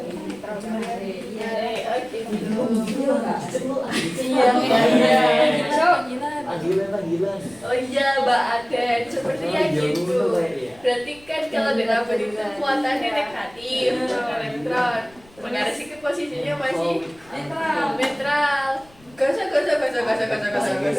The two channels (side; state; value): left; noise; rumble, 27 dB below the sound